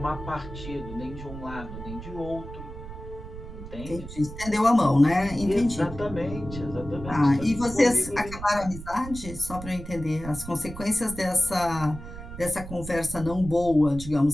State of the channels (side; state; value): right; noise; rumble, 11 dB below the sound